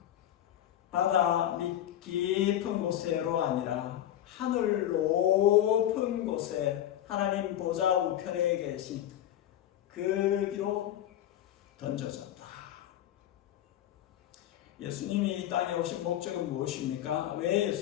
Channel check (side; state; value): right; quieter; 11.8 dB